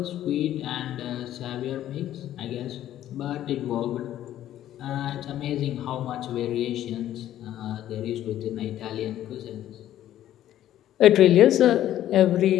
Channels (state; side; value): quieter; right; 12.3 dB